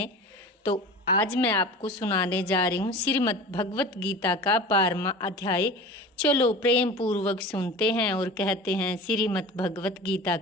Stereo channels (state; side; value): normal; both; correlation 0.35